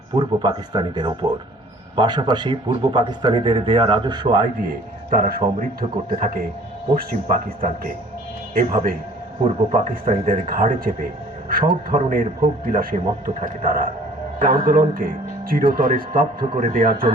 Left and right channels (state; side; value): normal; both; correlation 0.52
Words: পূর্ব পাকিস্তানিদের ওপর। পাশাপাশি পূর্ব পাকিস্তানিদের দেয়া রাজস্ব আয় দিয়ে তারা সমৃদ্ধ করতে থাকে পশ্চিম পাকিস্তানকে। এভাবে পূর্ব পাকিস্তানিদের ঘাড়ে চেপে সব ধরনের ভোগ বিলাসে মত্ত থাকে তারা। আন্দোলনকে চিরতরে স্তব্ধ করে দেওয়ার